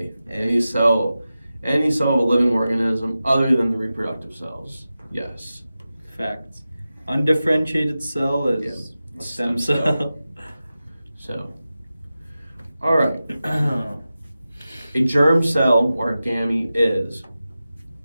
Any cell of a living organism other than the reproductive cells. Yes. Facts. Undifferentiated cell is Yeah. a stem cell. So, all right. A germ cell or a gamete is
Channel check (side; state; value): both; inverted; correlation -0.94